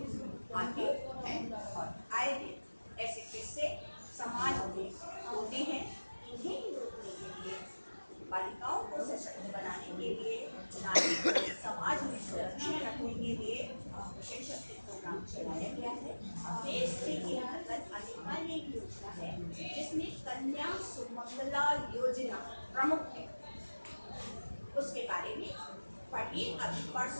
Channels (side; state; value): both; inverted; correlation -1.00